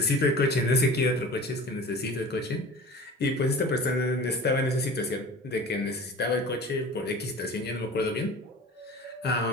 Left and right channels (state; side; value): normal; both; correlation 0.39